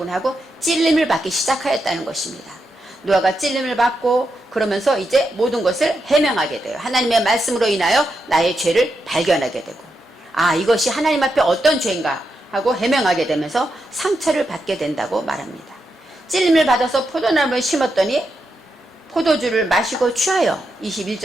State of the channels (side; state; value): both; normal; correlation 0.85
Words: 하고 찔림을 받기 시작하였다는 것입니다. 노아가 찔림을 받고 그러면서 이제 모든 것을 해명하게 돼요. 하나님의 말씀으로 인하여 나의 죄를 발견하게 되고, 아, 이것이 하나님 앞에 어떤 죄인가 하고 해명하게 되면서 상처를 받게 된다고 말합니다. 찔림을 받아서 포도나무를 심었더니 포도주를 마시고 취하여,